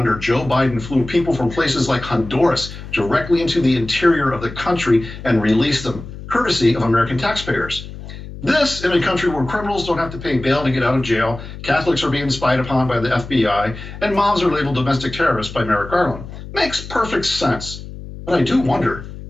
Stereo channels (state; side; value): noise; left; hum, 12 dB below the sound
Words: Joe Biden flew people from places like Honduras directly into the interior of the country and released them, courtesy of American taxpayers. This in a country where criminals don't have to pay bail to get out of jail, Catholics are being spied upon by the FBI, and moms are labeled domestic terrorists by Merrick Garland. Makes perfect sense. But I do wonder,